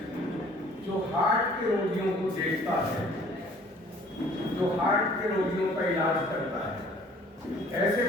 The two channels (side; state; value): both; normal; correlation 0.54